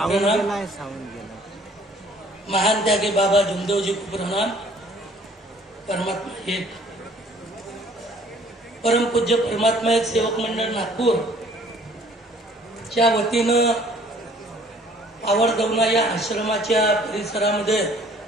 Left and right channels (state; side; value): normal; both; correlation 0.57